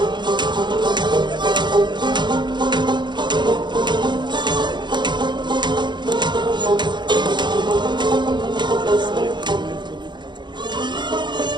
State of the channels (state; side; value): late; left; 0.22 ms